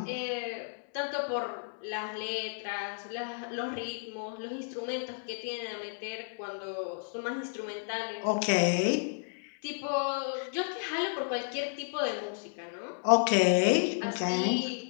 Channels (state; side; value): silent; right; 56 dB below the other